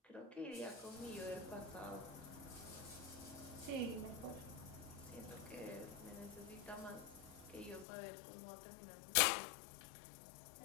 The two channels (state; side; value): drops out; right; at 7.9 s